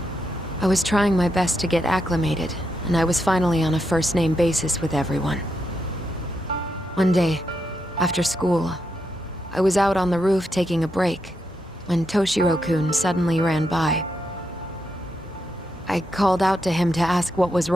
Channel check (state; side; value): normal; both; correlation 0.83